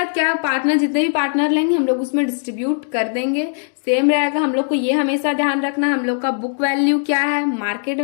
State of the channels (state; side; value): silent; right; digital silence